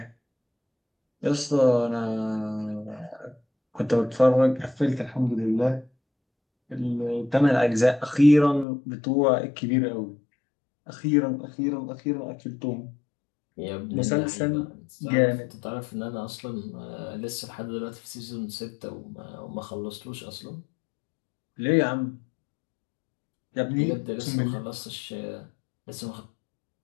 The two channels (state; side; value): drops out; right; at 8.7 s